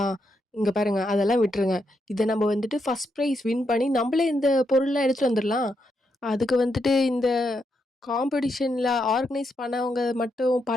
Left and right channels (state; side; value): normal; both; correlation 0.81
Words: இங்க பாருங்க அதெல்லாம் விட்டுருங்க. இத நம்ம வந்துட்டு ஃபர்ஸ்ட் பிரைஸ் வின் பண்ணி நம்பளே இந்த பொருள்லாம் எடுத்துட்டு வந்துரலாம். அதுக்கு வந்துட்டு இந்த காம்படிஷன்ல ஆர்கனைஸ் பண்ணவங்க மட்டும்